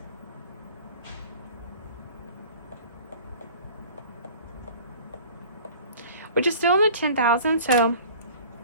Which is still in the 10,000, so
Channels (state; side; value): inverted; both; correlation -0.46